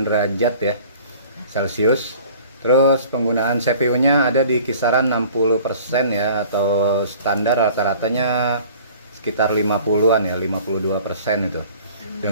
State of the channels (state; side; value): inverted; both; correlation -0.48